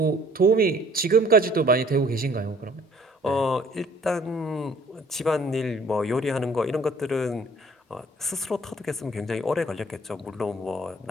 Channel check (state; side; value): normal; both; correlation 0.56